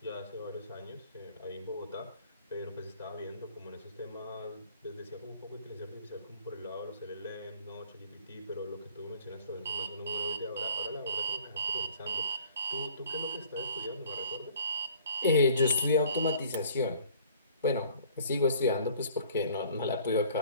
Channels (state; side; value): inverted; both; correlation -0.53